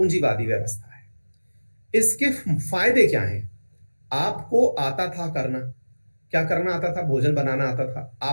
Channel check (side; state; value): both; inverted; correlation -1.00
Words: व्यवस्था है। इसके फायदे क्या हैं? आपको आता था करना, क्या करना आता था? भोजन बनाना आता था,